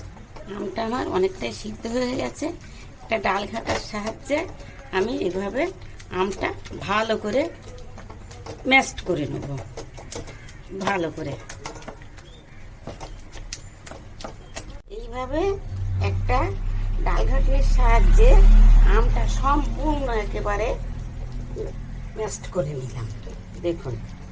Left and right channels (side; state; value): both; identical; correlation 1.00